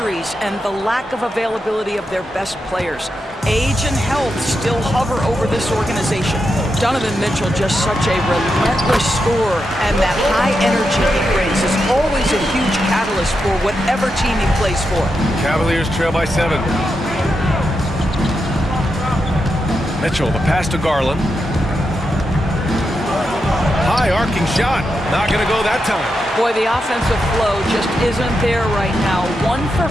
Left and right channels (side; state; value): both; normal; correlation 0.86